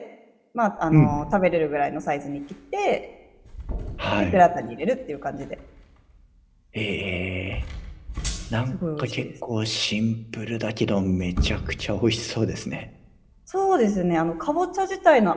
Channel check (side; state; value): both; identical; correlation 1.00